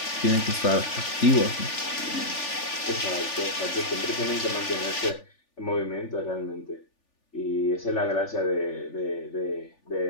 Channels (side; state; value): right; late; 3.4 ms